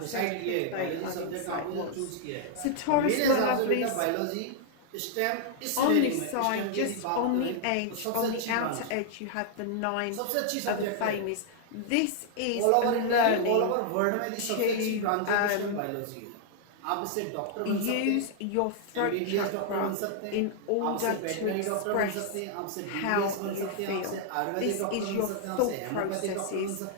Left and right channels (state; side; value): different; both; correlation -0.01